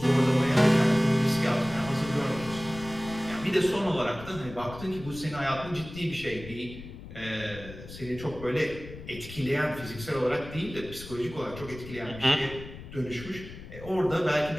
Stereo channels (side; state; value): left; noise; rumble, 14 dB below the sound